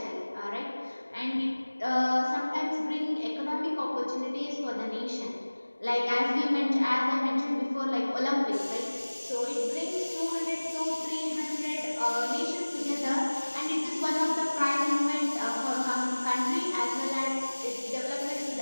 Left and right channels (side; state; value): both; inverted; correlation -1.00